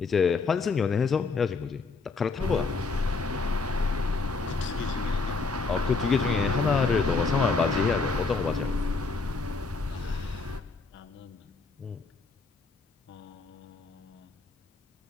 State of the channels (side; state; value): right; quieter; 4.1 dB